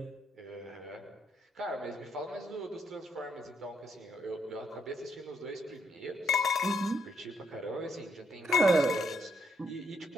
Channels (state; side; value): normal; both; correlation 0.75